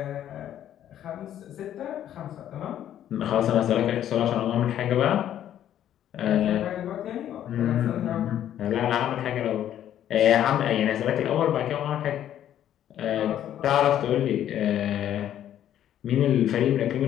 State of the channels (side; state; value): right; quieter; 11.0 dB